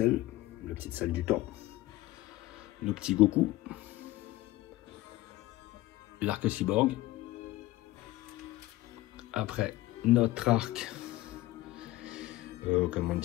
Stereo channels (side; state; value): right; quieter; 17.4 dB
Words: la petite salle du temps. Nos petits Goku. L'arc-cyborg. Après, notre arc, comment